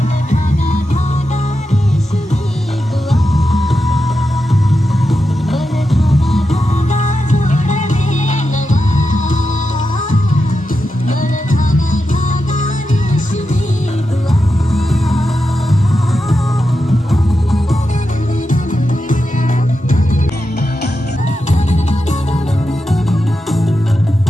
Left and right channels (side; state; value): both; normal; correlation 0.88